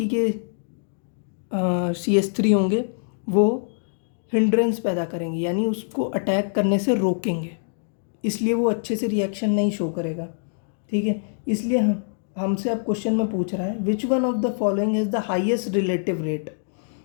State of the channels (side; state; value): right; silent; digital silence